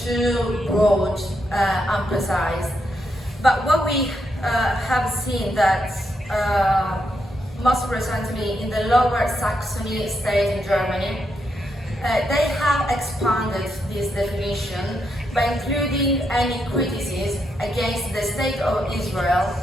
too broad and precise. But what we have seen that most recently in the Lower Saxony state in Germany, they have expanded this definition by including any criticism against the state of Israel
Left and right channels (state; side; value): normal; both; correlation 0.81